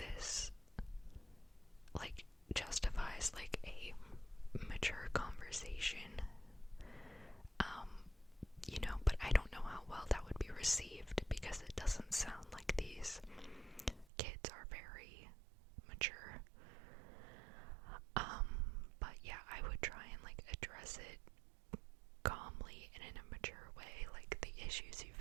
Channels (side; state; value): left; drops out; at 14.1 s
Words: like, justifies, like, a mature conversation. But I don't know how well that would be received, because it doesn't sound like these kids are very mature. But yeah, I would try and, like, address it calmly and in a mature way, like the issues you've